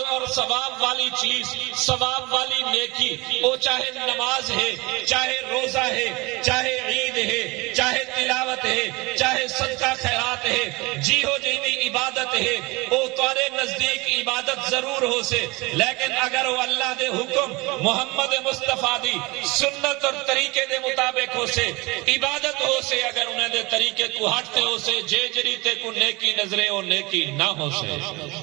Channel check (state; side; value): quieter; left; 24.4 dB